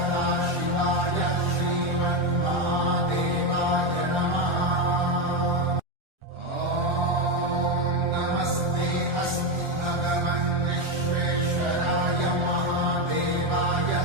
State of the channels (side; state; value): left; late; 1.3 ms